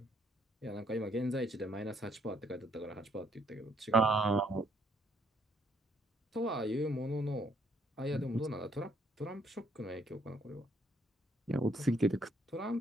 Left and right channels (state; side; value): normal; both; correlation 0.68